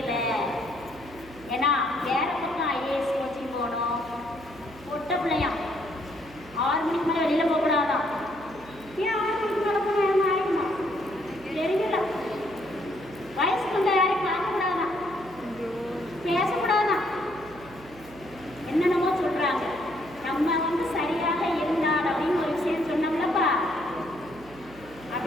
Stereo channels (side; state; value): right; noise; hum, 21 dB below the sound